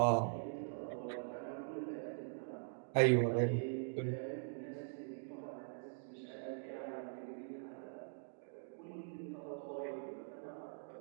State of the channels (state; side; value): silent; left; digital silence